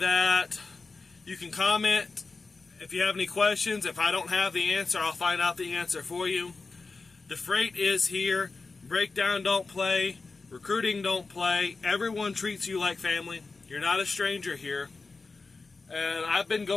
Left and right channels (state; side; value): quieter; right; 4.0 dB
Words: you can comment If you have any questions, if I don't have the answer, I'll find out the answer for you. The freight is here. Breakdown don't play. Recruiting don't play. Everyone treats you like family. You're not a stranger here. And I've been